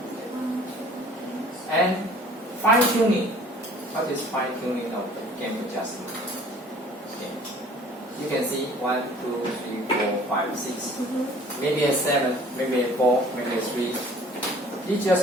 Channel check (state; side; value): normal; both; correlation 0.52